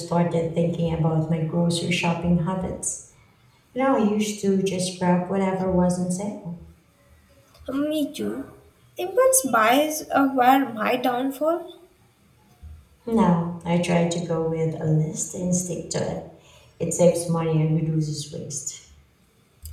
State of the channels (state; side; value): identical; both; correlation 1.00